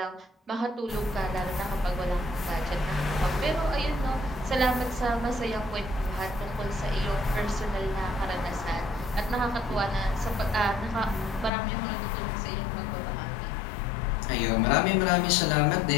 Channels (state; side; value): drops out; right; at 11.5 s